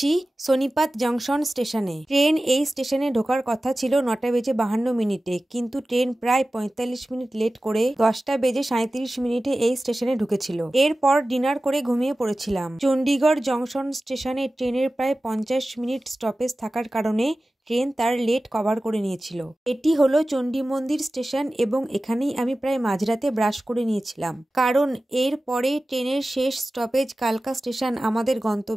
সোনিপত জংশন স্টেশনে। ট্রেন এই স্টেশনে ঢোকার কথা ছিল 9:52 কিন্তু ট্রেন প্রায় 45 মিনিট লেট করে 10:37 এই স্টেশনে ঢুকেছিল। এরপর ডিনার করে ঘুমিয়ে পড়েছিলাম। চণ্ডীগড় জংশন স্টেশনে ট্রেনের প্রায় 50 মিনিট স্টপেজ থাকার কারণে ট্রেন তার লেট কভার করে নিয়েছিল। এটি হলো চণ্ডী মন্দির স্টেশন এবং এখানেই আমি প্রায় মাঝরাতে ব্রাশ করে নিয়েছিলাম, কারণ এর পরে ট্রেনের শেষ স্টপেজ কালকা স্টেশন, আমাদের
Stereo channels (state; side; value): normal; both; correlation 0.96